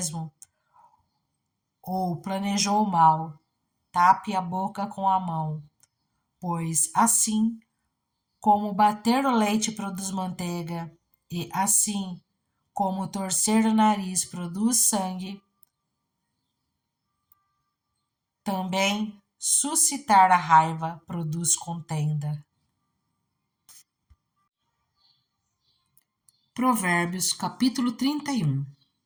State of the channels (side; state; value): both; identical; correlation 1.00